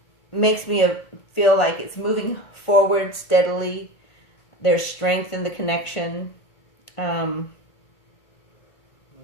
makes me feel like it's moving forward steadily. There's strength in the connection.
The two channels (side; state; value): right; late; 1.4 ms